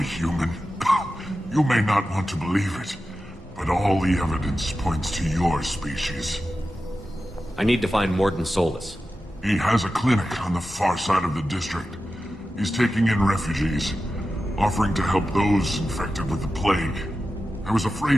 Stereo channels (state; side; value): normal; both; correlation 0.92